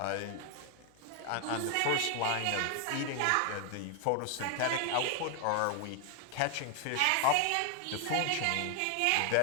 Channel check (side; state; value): both; different; correlation 0.00